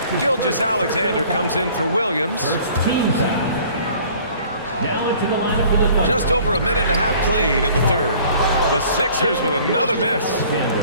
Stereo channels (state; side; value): inverted; both; correlation -0.52